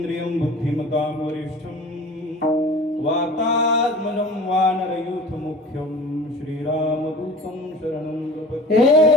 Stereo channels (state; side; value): normal; both; correlation 0.41